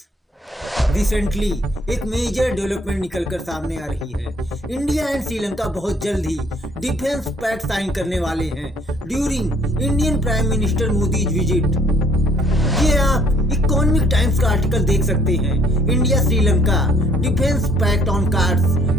Recently एक major development निकलकर सामने आ रही है। इंडिया एंड श्रीलंका बहुत जल्द ही डिफेंस पैक्ट साइन करने वाले हैं during Indian prime minister Modi's visit. ये आप इकोनॉमिक टाइम्स का आर्टिकल देख सकते हैं। India Sri Lanka defence pact on cards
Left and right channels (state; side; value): normal; both; correlation 0.61